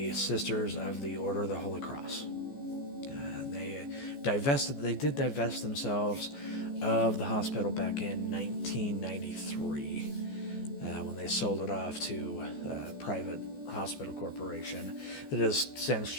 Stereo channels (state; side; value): late; right; 14 ms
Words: Sisters of the Order of the Holy Cross. They did divest themselves of the hospital back in 1993 when they sold it off to a private hospital corporation that has since